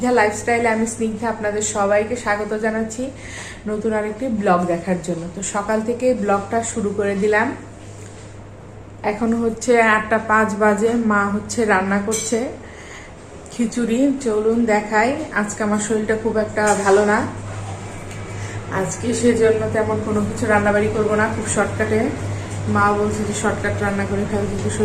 লাইফস্টাইলে আমি স্নিগ্ধা আপনাদের সবাইকে স্বাগত জানাচ্ছি নতুন আরেকটি ব্লগ দেখার জন্য। তো সকাল থেকে ব্লগটা শুরু করে দিলাম। এখন হচ্ছে 8:05 বাজে। মা হচ্ছে রান্না করছে খিচুড়ি। চলুন দেখাই। আজকে আমার শরীরটা খুব একটা ভালো না, আজকে সেজন্য তেমন কোনো কিছু রান্নাবাড়ি করবো না, খুব শর্টকাটে। মা বলছে যে শর্টকাট রান্না করে খাবে, কিন্তু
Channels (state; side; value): identical; both; correlation 1.00